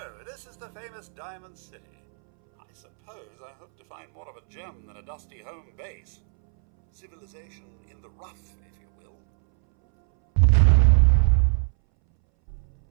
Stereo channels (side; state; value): left; silent; 62 dB below the other